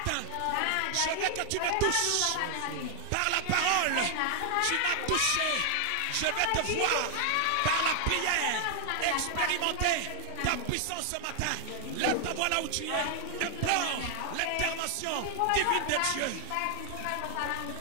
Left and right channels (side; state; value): both; different; correlation 0.00